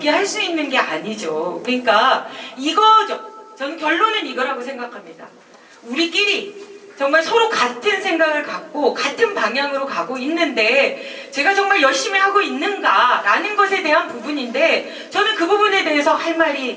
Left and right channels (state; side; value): identical; both; correlation 1.00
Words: 수 있는 게 아니죠. 그러니까 이거죠. 저는 결론은 이거라고 생각합니다. 우리끼리 정말 서로 같은 생각을 갖고 같은 방향으로 가고 있는데 제가 정말 열심히 하고 있는가라는 것에 대한 부분인데 저는 그 부분에 대해서 할